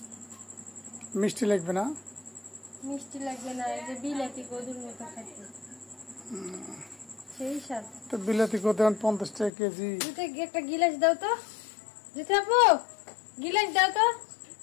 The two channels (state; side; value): drops out; right; at 9.5 s